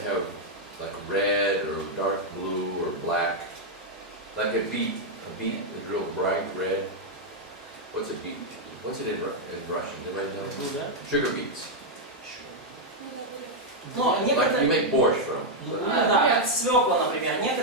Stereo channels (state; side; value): normal; both; correlation -0.01